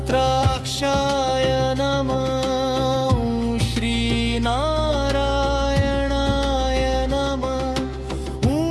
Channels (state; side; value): identical; both; correlation 1.00